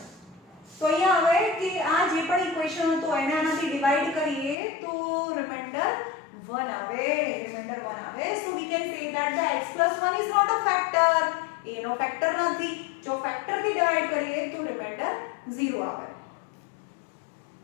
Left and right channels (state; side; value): drops out; right; at 4.5 s